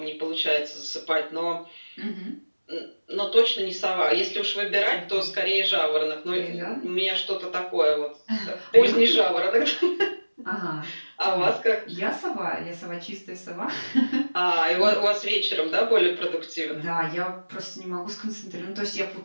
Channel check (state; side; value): inverted; both; correlation -1.00